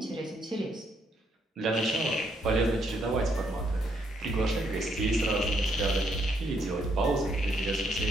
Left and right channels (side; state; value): both; normal; correlation 0.73